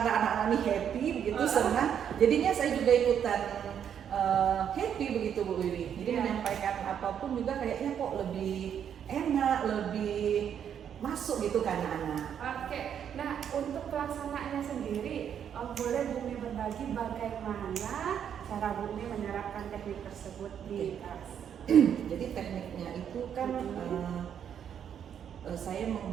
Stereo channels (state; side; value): quieter; left; 8.7 dB